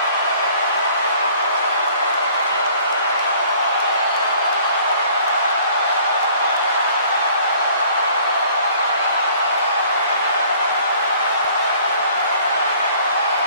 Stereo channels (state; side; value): inverted; both; correlation -0.55